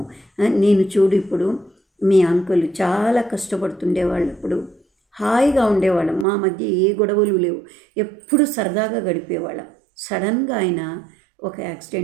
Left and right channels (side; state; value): left; drops out; at 6.2 s